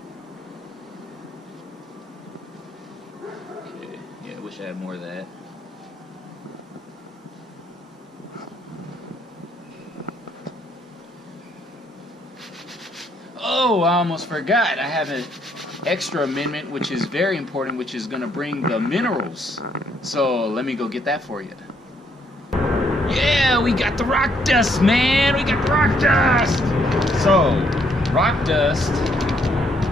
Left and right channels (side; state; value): both; normal; correlation 0.70